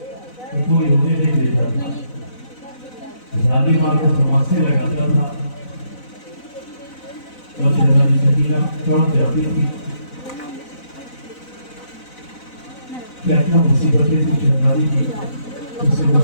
तो कोई होने नहीं देता था। शादी माँ को तमाशे लगाता था और शहजादी सकीना चौंक जाती थी। क्या क्या मुसीबतें थी शहजादी की, उससे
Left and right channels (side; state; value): right; late; 4.0 ms